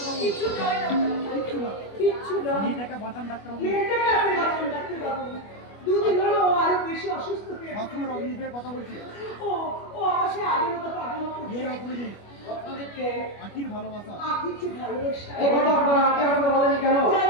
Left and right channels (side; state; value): right; late; 25 ms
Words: দুদিন হলো আরো বেশি অসুস্থ হয়ে কথা বলছি। ও আমার সে আগের মতো পাগল করছে। রত্নদ্বীপকে আখির ভালোবাসা, আখির চেয়ে ভালোবাসা। এই কথা আপনারা আগে আমাকে বলেনি কেন?